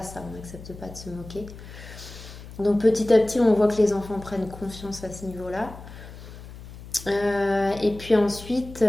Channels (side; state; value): left; noise; hum, 15 dB below the sound